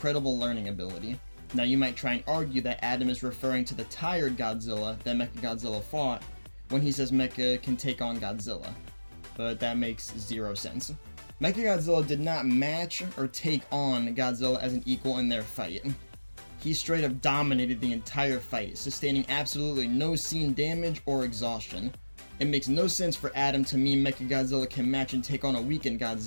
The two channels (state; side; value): inverted; both; correlation -1.00